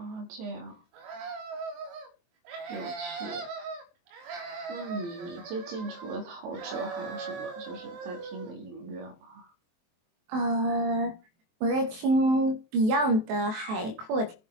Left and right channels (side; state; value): left; late; 23 ms